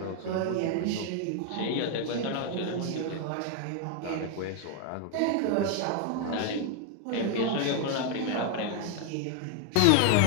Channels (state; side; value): different; both; correlation 0.00